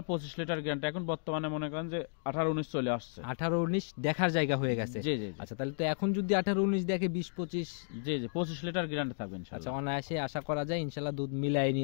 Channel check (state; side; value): silent; right; digital silence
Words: 25 লিটার গ্যারান্টি। এখন বর্তমানে মনে করেন যে 18-19 চলে আসছে। 18-19 দেখার জায়গা হয়ে গেছে। জি জি জি। আচ্ছা, তাহলে তো এখন যদি 18-19 দেখে 20-25 জি জি 25 লিটার গ্যারান্টি থাকবে আচ্ছা, ইনশাল্লাহ। অনায়াসে আশা করা যায় ইনশাআল্লাহ দুধ মিলাই